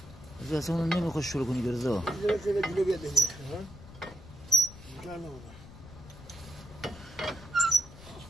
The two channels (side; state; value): left; noise; rumble, 17 dB below the sound